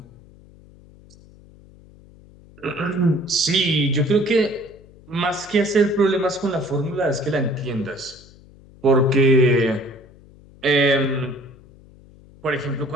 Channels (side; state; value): left; noise; hum, 24 dB below the sound